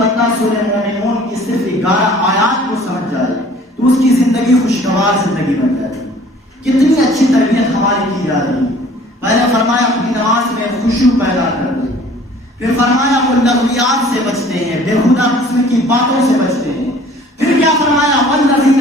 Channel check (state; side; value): normal; both; correlation 0.52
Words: سورہ مومنون کی صرف 11 آیات کو سمجھ جائے تو اس کی زندگی خوشگوار زندگی بن جاتی ہے۔ کتنی اچھی تربیت ہماری کی جا رہی ہے۔ پہلے فرمایا اپنی نماز میں خشوع پیدا کر دے، پھر فرمایا وہ لغویات سے بچتے ہیں، بےہودہ قسم کی باتوں سے بچتے ہیں، پھر کیا فرمایا والذین